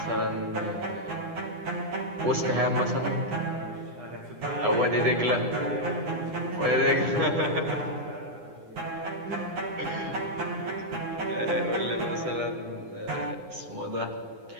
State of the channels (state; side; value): late; left; 9.8 ms